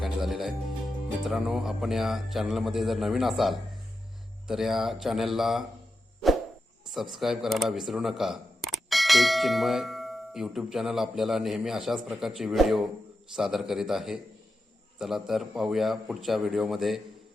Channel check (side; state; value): both; normal; correlation 0.89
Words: झालेलं आहे. मित्रांनो, आपण या चॅनलमध्ये जर नवीन असाल तर या चॅनलला सबस्क्राईब करायला विसरू नका. एक चिन्मय यूट्यूब चॅनल आपल्याला नेहमी अशाच प्रकारचे व्हिडिओ सादर करीत आहे. चला तर पाहूया पुढच्या व्हिडिओमध्ये